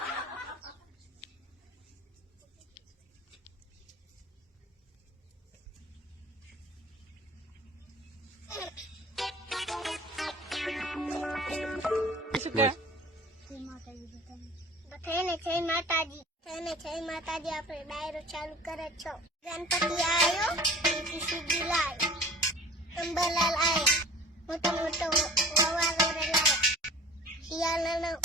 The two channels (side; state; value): both; normal; correlation 0.44